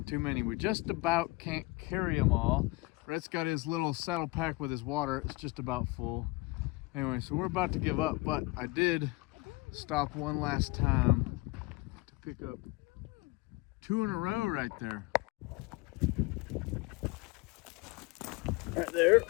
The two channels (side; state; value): right; quieter; 22.9 dB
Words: too many. We just about can't carry them all. Rhett's got his little saddle pack with his water. It's just about full. Anyway, so we're about to give up, but I did stop one last time to pick up 2 in a row right there. Right there,